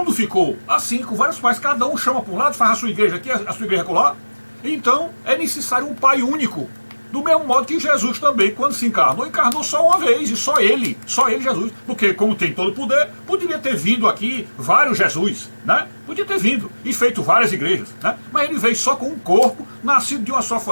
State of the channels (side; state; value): both; inverted; correlation -1.00